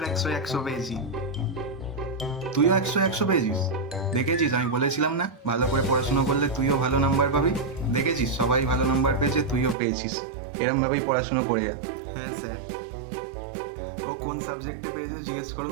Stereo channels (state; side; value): drops out; left; at 9.8 s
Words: 100 পেয়েছি। তুইও 100 পেয়েছিস? দেখেছিস, আমি বলেছিলাম না, ভালো করে পড়াশোনা করলে তুইও ভালো নাম্বার পাবি। দেখেছিস, সবাই ভালো নাম্বার পেয়েছে, তুইও পেয়েছিস। এরমভাবেই পড়াশোনা করে যা। হ্যাঁ স্যার। ও কোন সাবজেক্টে পেয়েছে জিজ্ঞেস